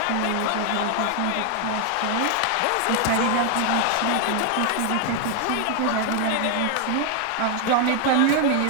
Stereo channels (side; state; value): both; different; correlation 0.00